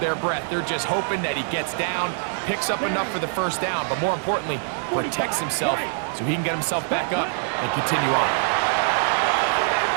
breath. They're just hoping that he gets down, picks up enough for the 1st down, but more importantly, protects himself so he can get himself back up and continue on.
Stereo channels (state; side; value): silent; left; 63 dB below the other